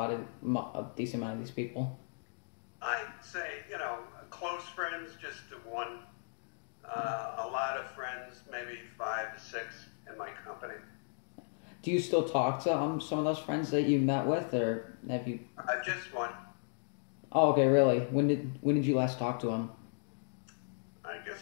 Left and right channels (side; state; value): right; silent; digital silence